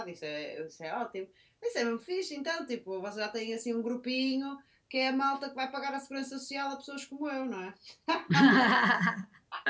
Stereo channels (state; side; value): identical; both; correlation 1.00